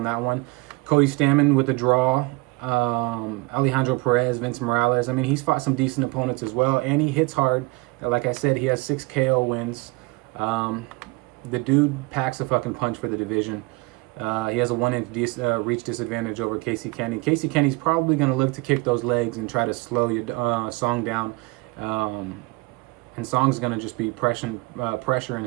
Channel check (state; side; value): quieter; left; 25.1 dB